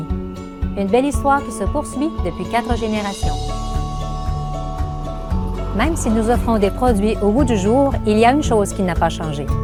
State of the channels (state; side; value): identical; both; correlation 1.00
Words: Une belle histoire qui se poursuit depuis 4 générations. Même si nous offrons des produits au goût du jour, il y a une chose qui n'a pas changé.